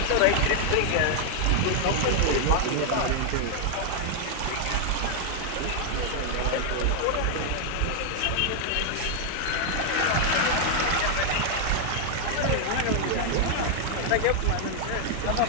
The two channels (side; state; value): both; different; correlation 0.00